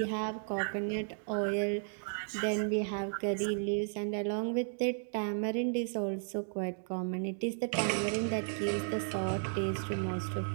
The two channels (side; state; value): left; silent; digital silence